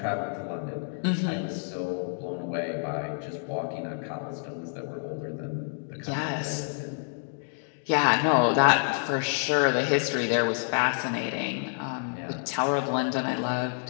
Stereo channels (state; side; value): silent; right; digital silence